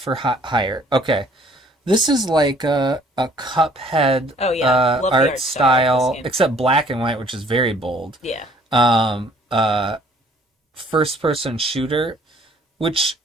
hire. Okay. This is like a Cuphead art style, except black and white, which is very bold. Yeah. First person shooter, which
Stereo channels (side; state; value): both; normal; correlation 0.58